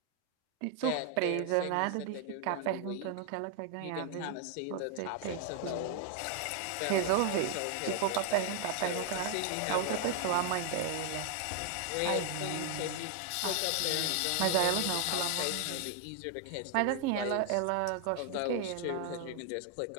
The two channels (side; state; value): both; different; correlation 0.00